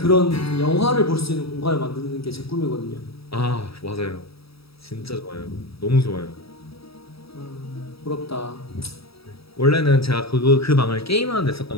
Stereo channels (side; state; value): right; late; 0.77 ms